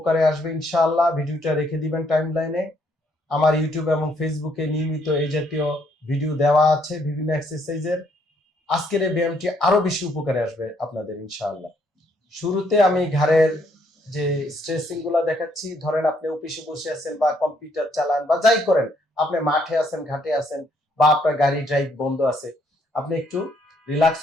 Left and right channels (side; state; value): both; normal; correlation 0.70